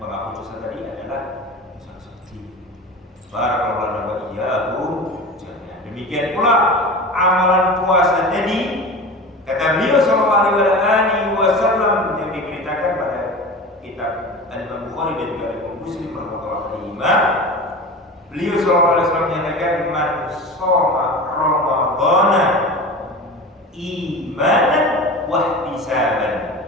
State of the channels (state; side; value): normal; both; correlation 0.32